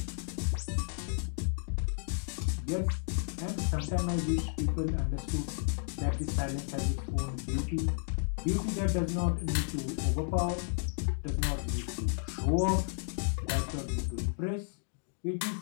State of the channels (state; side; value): silent; right; digital silence